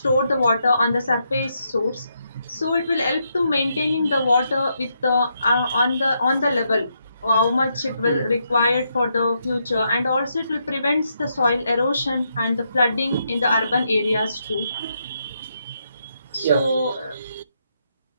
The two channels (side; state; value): both; inverted; correlation -0.79